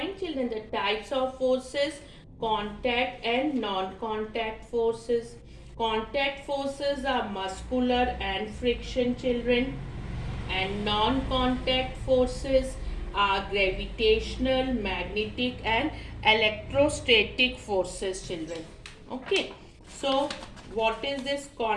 children, the types of forces, contact and non-contact forces. Contact forces are muscular and friction, children, and non-contact forces are gravitational, magnetic and electrostatic forces, children. Okay, so what is this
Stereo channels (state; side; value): identical; both; correlation 1.00